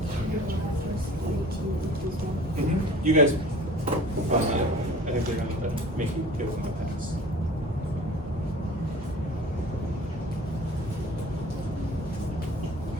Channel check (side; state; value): both; normal; correlation 0.44